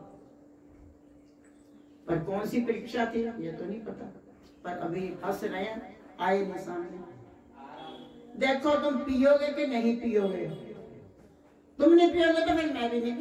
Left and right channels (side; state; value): both; identical; correlation 1.00